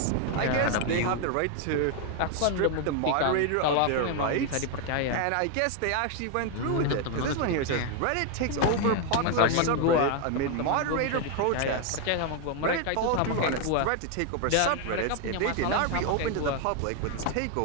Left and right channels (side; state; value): both; different; correlation 0.01